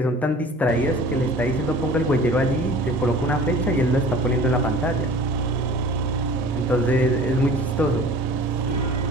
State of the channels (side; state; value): both; normal; correlation 0.44